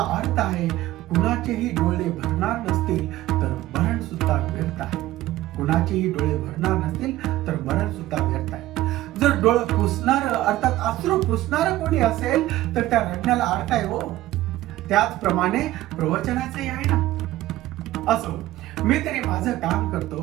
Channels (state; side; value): quieter; left; 15.8 dB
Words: अर्थ आहे. कुणाचेही डोळे भरणार नसतील तर मरण सुद्धा व्यर्थ आहे. कुणाचेही डोळे भरणार नसतील तर मरण सुद्धा व्यर्थ आहे. जर डोळे पुसणार अर्थात अश्रू पुसणारा कोणी असेल तर त्या रडण्याला अर्थ आहे हो. त्याचप्रमाणे प्रवचनाचंही आहे ना. असो, मी तरी माझं काम